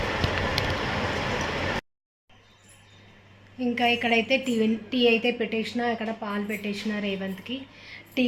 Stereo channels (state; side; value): identical; both; correlation 1.00